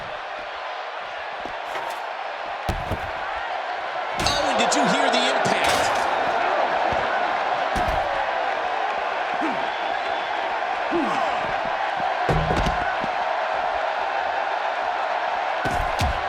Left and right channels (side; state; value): both; identical; correlation 1.00